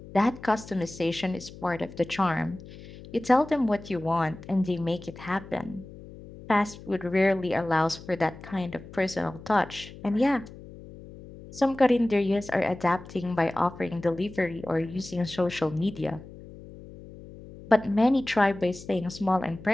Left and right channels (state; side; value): noise; left; hum, 17 dB below the sound